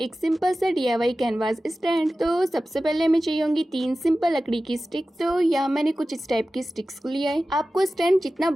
सिंपल सा DIY कैनवास स्टैंड। तो सबसे पहले हमें चाहिए होंगी 3 सिंपल लकड़ी की स्टिक। तो यहाँ मैंने कुछ इस टाइप की स्टिक्स को लिया है। आपको स्टैंड जितना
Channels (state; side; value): normal; both; correlation 0.95